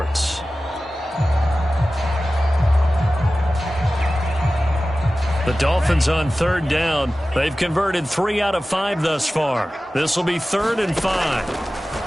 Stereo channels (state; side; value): normal; both; correlation 0.96